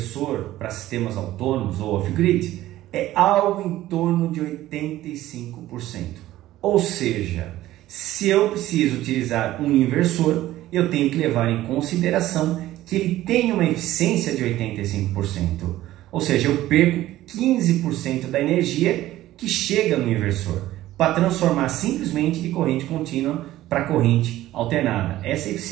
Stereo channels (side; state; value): left; quieter; 15.0 dB